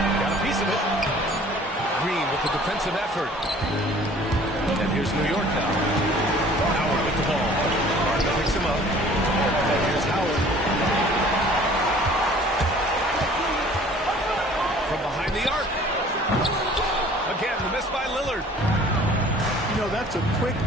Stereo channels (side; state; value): both; normal; correlation 0.51